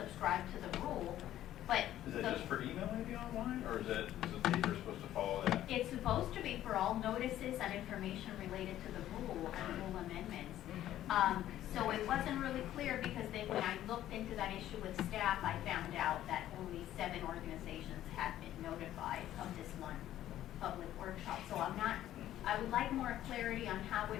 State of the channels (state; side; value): quieter; right; 12.8 dB